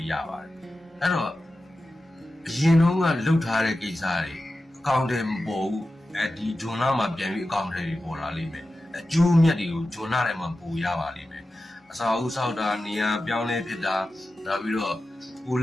းရပါတယ်အဲ့တော့အရင်တုန်းကလှုပ်ထားတဲ့ကိစ္စတွေအကောင့်တွေမပေါ်ဘူးဒီဂျွန်လာမှာပြန်ပြီးအကောင့်တွေပေါ်လာလိမ့်မယ်အကျိုးမြတ်တွေကိုဂျွန်လာထဲမှာပို့ရပါလိမ့်မယ်အစာအုပ်ဆောက်တာနေရာပြောင်းလဲဖြစ်တာနောက်ပြီးတော့ကို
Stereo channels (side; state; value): both; normal; correlation 0.93